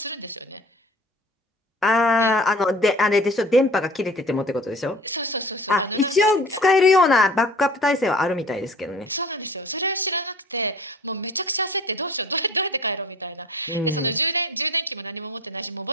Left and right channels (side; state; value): both; normal; correlation 0.45